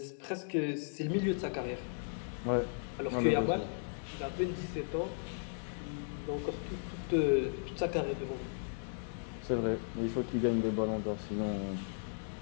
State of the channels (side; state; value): right; silent; digital silence